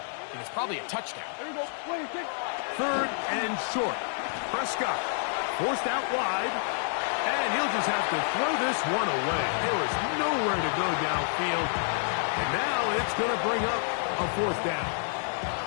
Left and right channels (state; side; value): silent; right; digital silence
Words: and it's probably a touchdown. Third and short. Prescott forced out wide, and he'll just have to throw this one away. There was nowhere to go downfield, and now it's going to bring up a fourth down.